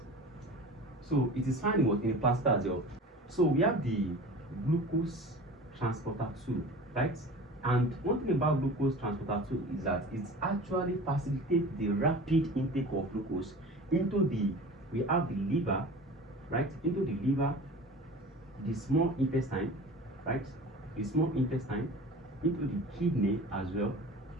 So it is found in the placenta as well. So we have the glucose transporter 2, right? And one thing about glucose transporter 2 is that it actually facilitates the rapid intake of glucose into we have the liver, right? Into the liver, the small intestine, right? The small intestine, into the kidney as well,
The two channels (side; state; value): both; normal; correlation 0.38